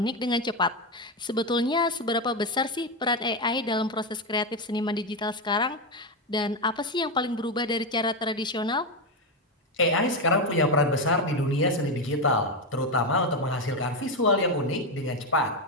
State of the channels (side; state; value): both; normal; correlation 0.10